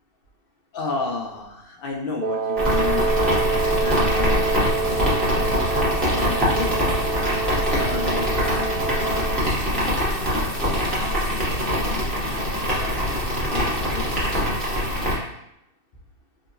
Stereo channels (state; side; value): late; right; 2.6 ms